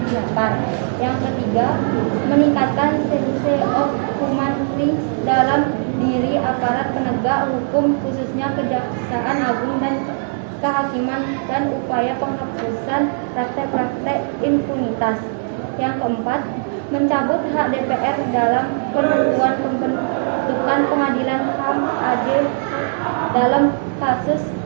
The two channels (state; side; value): silent; left; digital silence